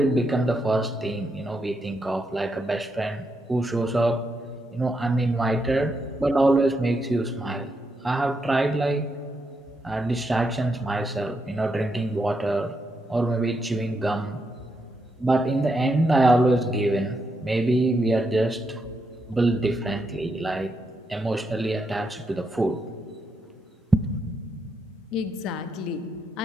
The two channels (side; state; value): both; normal; correlation 0.81